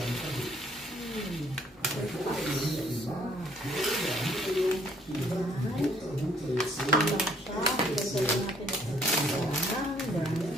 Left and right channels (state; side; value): normal; both; correlation 0.63